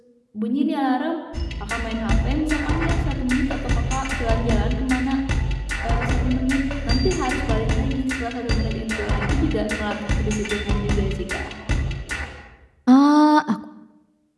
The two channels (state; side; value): identical; both; correlation 1.00